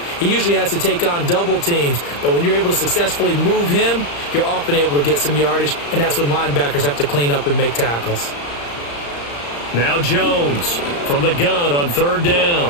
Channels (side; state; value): right; late; 35 ms